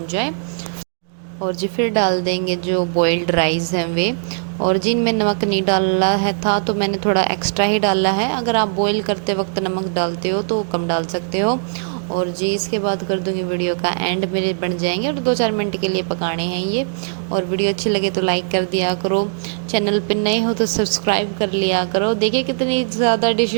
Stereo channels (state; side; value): silent; left; digital silence